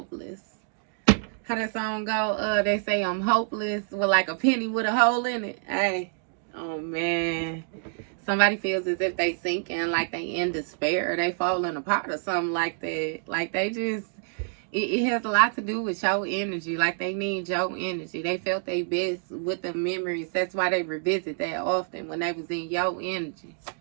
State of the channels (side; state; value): left; silent; digital silence